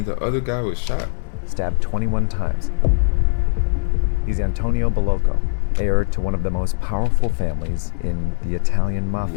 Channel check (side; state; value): right; silent; digital silence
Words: the other guy was shot? Stabbed 21 times. He's Antonio Bolocco, heir to one of the most powerful families in the Italian Mafia.